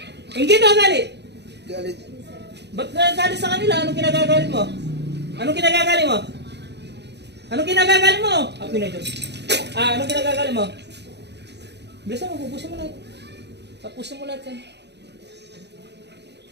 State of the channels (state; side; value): late; left; 0.50 ms